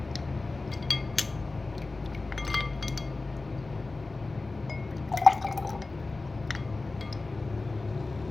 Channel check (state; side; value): quieter; right; 3.4 dB